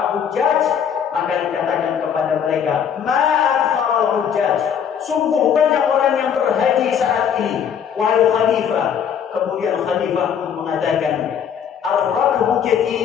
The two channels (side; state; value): right; quieter; 8.1 dB